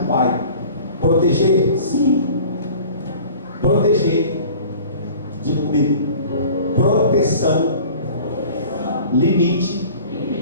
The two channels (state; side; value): inverted; both; correlation -0.45